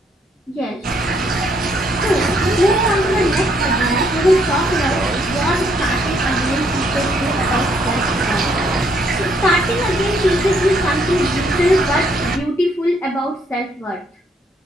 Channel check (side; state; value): both; normal; correlation 0.70